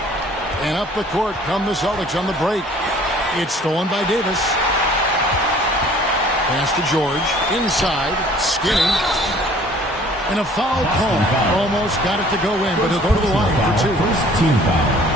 And up the court come the Celtics on the break. It's stolen by Davis. Pass to George. Inside. Skinny. And a foul call. Almost got it to go in, but he'll go to the line for 2.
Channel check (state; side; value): normal; both; correlation 0.53